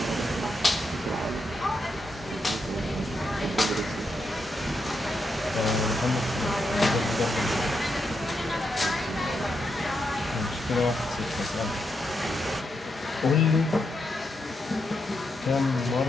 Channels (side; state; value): both; normal; correlation 0.83